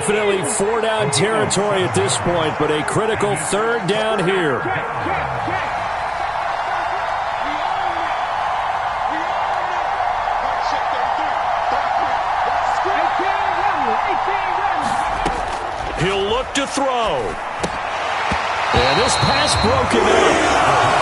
4-down territory at this point, but a critical 3rd down here. He'll look to throw. And this pass broken up.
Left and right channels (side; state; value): both; identical; correlation 1.00